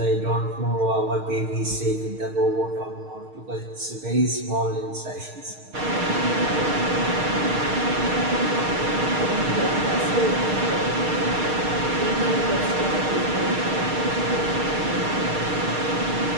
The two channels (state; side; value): late; left; 6.5 ms